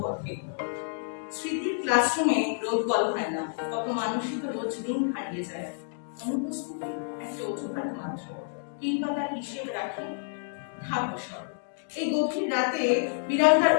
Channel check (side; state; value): right; silent; digital silence